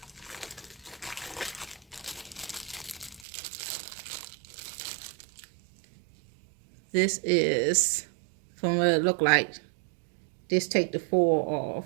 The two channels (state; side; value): drops out; left; at 3.2 s